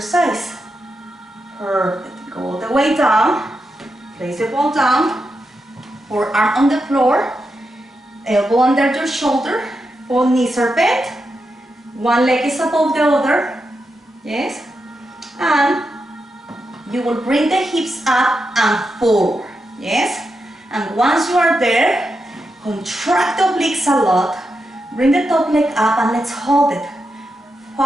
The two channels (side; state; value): both; normal; correlation 0.86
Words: Perfect. Go all the way down. Place the ball down. Forearm on the floor. Elbow under your shoulder. Both knees are bent. One leg is above the other. Yes. And you will bring the hips up and forward. Yes. And once you are there, contract the obliques a lot. Bring the top leg up and let's hold it.